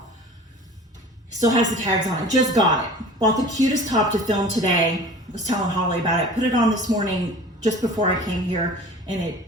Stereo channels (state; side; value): normal; both; correlation 0.42